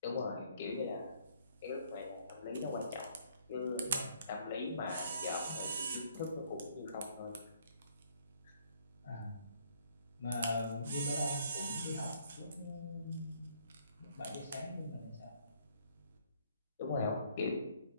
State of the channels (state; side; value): inverted; both; correlation -0.64